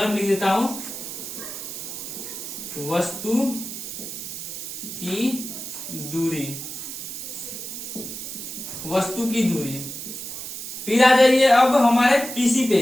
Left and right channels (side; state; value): right; noise; hiss, 8 dB below the sound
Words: में लिख देता हूं वस्तु की दूरी, वस्तु की दूरी। फिर आ जाइए अब हमारे पीसी